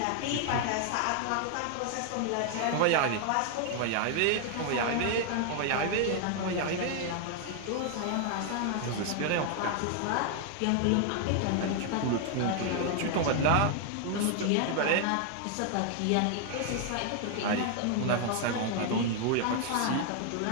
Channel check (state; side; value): different; both; correlation 0.00